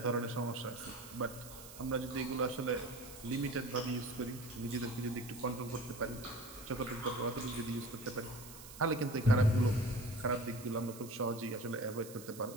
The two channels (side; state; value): right; noise; hiss, 15 dB below the sound